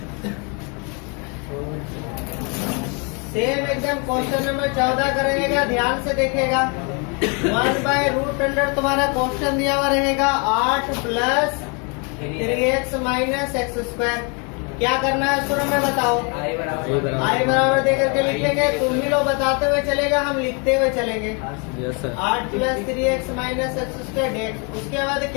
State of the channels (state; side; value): quieter; right; 34.4 dB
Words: सेम एकदम क्वेश्चन नंबर 14 का रहेगा, ध्यान से देखेगा। 1/√, तुम्हारा क्वेश्चन दिया हुआ रहेगा 8 प्लस 3x माइनस x²। क्या करना है शुरू में बताओ? आई बराबर देकर के लिखेंगे। तुम ही लोग बताते हुए चलेगा, हम लिखते हुए चलेंगे। 8 plus 3x minus x² dx। उसके बाद